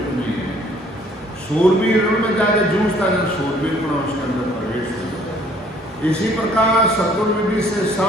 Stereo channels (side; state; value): both; normal; correlation 0.59